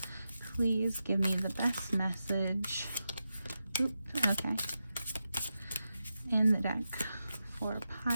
Please give me the best message. Oops, okay. In the deck for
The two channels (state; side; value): inverted; both; correlation -0.89